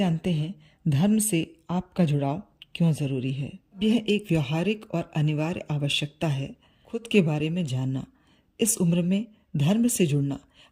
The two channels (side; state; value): both; identical; correlation 1.00